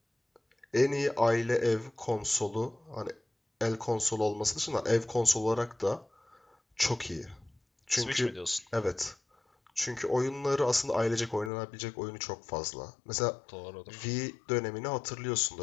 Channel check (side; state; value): right; drops out; at 11.5 s